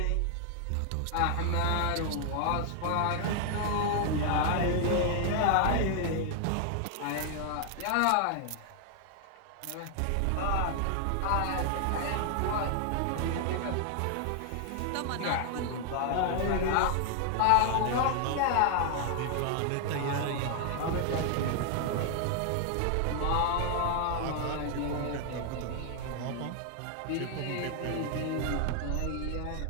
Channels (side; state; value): both; different; correlation 0.00